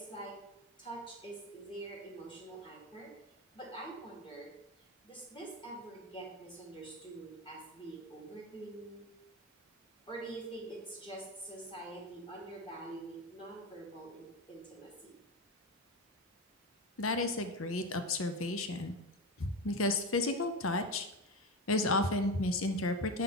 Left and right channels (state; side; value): normal; both; correlation 0.20